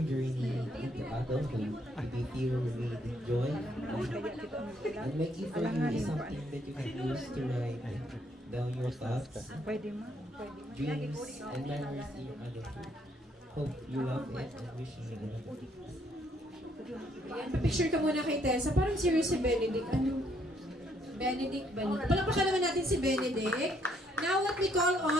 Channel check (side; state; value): both; normal; correlation 0.70